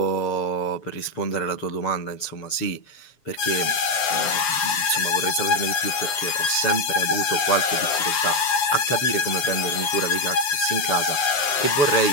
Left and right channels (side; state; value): right; late; 7.3 ms